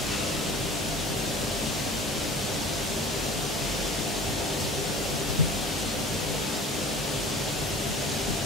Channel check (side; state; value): both; normal; correlation 0.42